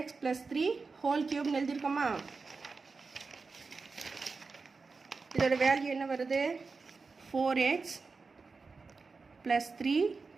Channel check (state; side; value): quieter; left; 4.4 dB